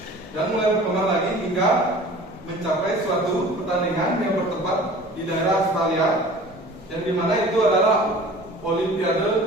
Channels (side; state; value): both; normal; correlation 0.44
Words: dan mulai berkembang lagi hingga mencapai suatu pertandingan yang bertempat di daerah Australia, yang dimana itu adalah